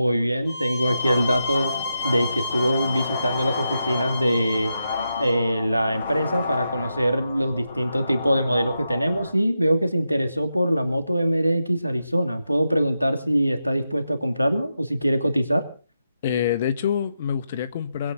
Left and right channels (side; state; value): both; inverted; correlation -0.87